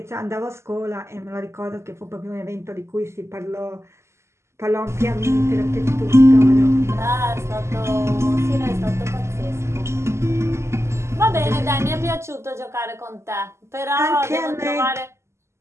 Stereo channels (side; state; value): left; late; 0.13 ms